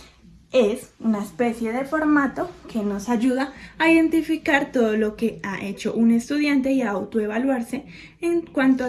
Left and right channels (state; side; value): identical; both; correlation 1.00